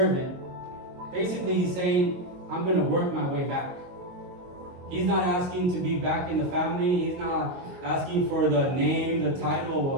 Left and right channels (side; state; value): left; late; 22 ms